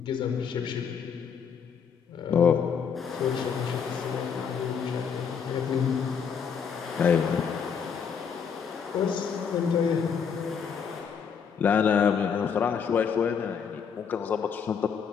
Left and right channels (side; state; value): right; quieter; 6.8 dB